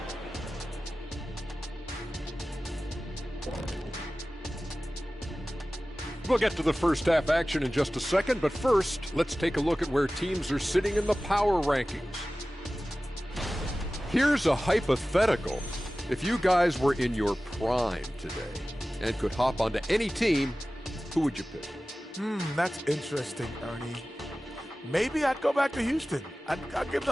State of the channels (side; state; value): both; normal; correlation 0.96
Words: We'll get to the first half action in just a second, but first, let's take a look at where teams are sitting in the power rankings. Here's a hypothetical. If you guys were in your prime today and could hop onto any team, who would you pick? That's interesting, Ernie. Maybe I'd go back to Houston. I'd give